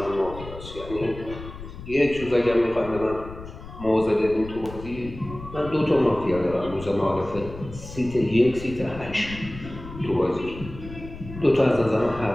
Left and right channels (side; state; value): left; noise; rumble, 13 dB below the sound